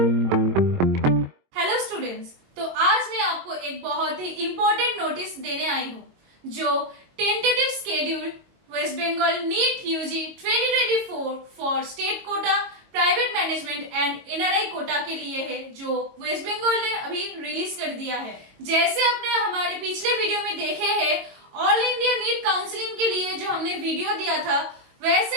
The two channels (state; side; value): late; left; 22 ms